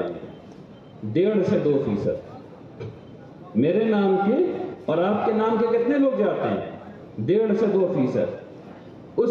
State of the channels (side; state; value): both; identical; correlation 1.00